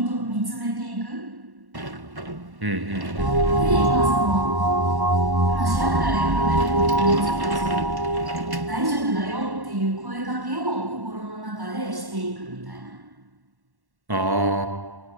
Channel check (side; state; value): left; late; 1.1 ms